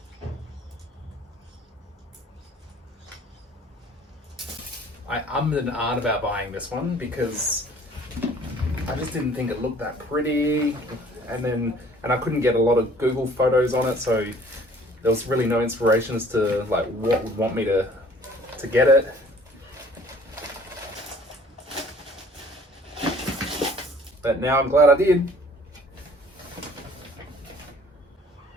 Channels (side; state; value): both; normal; correlation 0.54